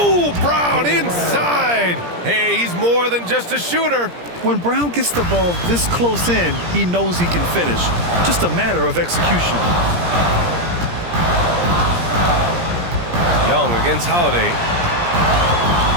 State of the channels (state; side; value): late; left; 17 ms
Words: Brown inside. Hey, he's more than just a shooter. When Brown gets the ball this close in, he knows he can finish. Just a matter of execution. Young against Holiday.